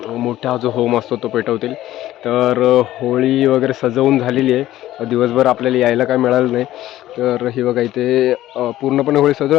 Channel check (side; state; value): right; quieter; 14.4 dB